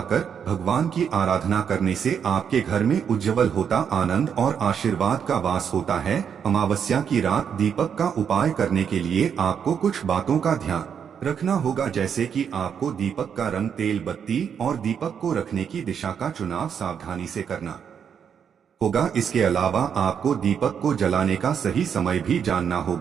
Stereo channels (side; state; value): left; quieter; 7.6 dB